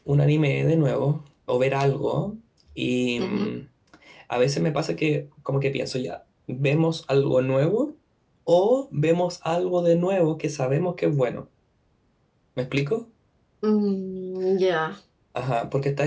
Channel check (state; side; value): identical; both; correlation 1.00